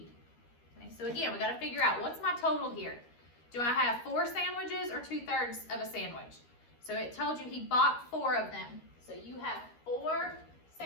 Okay, so again, we gotta figure out, what's my total here? Do I have 4 sandwiches or 2/3 of a sandwich? So it told you he bought 4 of them. So you have 4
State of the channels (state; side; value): late; right; 13 ms